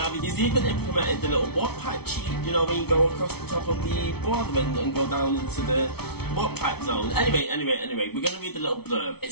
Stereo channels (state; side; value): late; right; 0.96 ms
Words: He's even implemented the little warp pipe cheat, you know, when you go across the top of the border and go down into the warp pipe zone. Anyway, we're going to read the little blurb. It